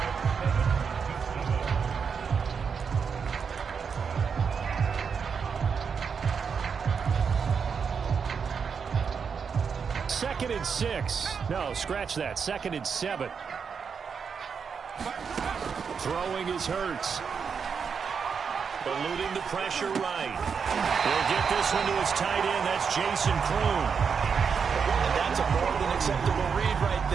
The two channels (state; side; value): quieter; left; 6.2 dB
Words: Second and 6. No, scratch that. Second and 7. Throwing is Hurts. Eluding the pressure right. He'll get this one to his tight end. That's Jason Kroon. And that's a more than acceptable read right